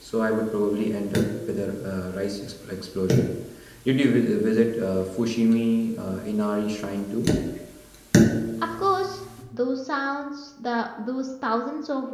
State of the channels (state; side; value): identical; both; correlation 1.00